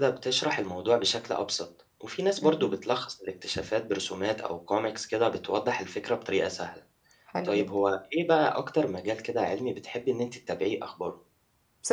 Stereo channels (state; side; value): identical; both; correlation 1.00